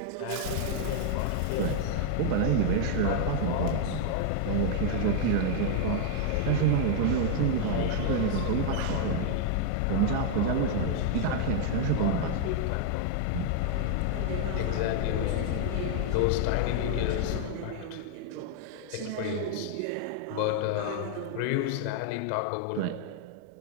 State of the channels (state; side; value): different; both; correlation 0.00